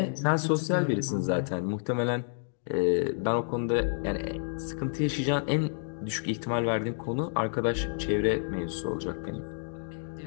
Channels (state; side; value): silent; right; digital silence